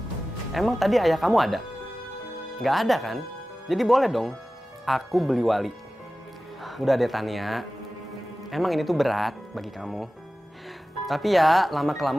Emang tadi ayah kamu ada? Nggak ada kan? Jadi boleh dong aku beli wali. Udah deh Tania, emang ini tuh berat bagi kamu. Tapi ya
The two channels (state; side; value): normal; both; correlation 0.96